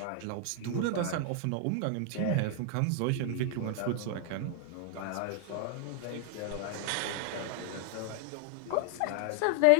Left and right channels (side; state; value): both; different; correlation 0.00